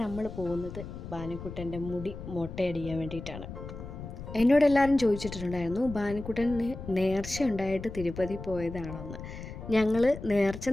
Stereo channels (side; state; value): left; noise; rumble, 10 dB below the sound